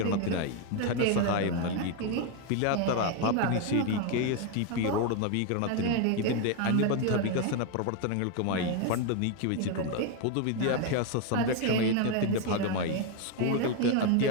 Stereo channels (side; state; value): both; different; correlation 0.01